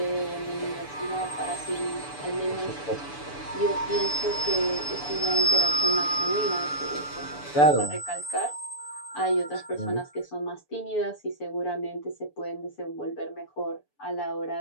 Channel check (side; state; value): right; late; 6.9 ms